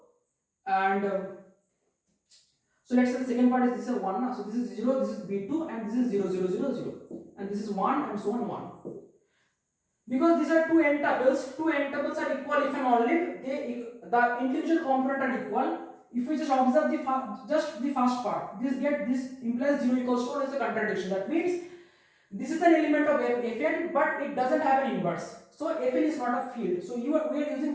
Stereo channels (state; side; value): identical; both; correlation 1.00